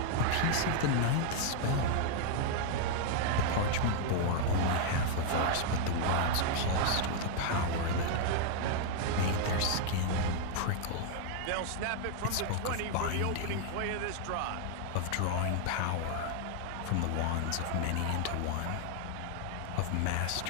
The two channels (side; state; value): both; different; correlation 0.00